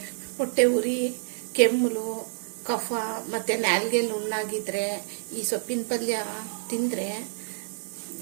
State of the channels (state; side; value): silent; left; digital silence